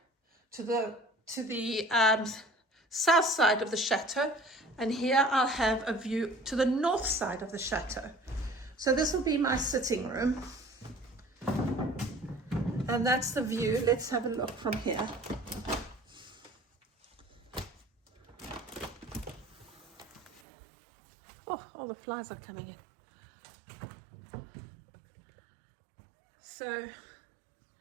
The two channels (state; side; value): drops out; left; at 20.4 s